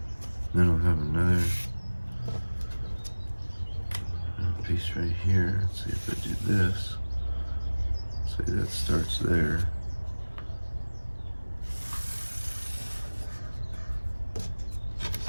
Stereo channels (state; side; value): inverted; both; correlation -1.00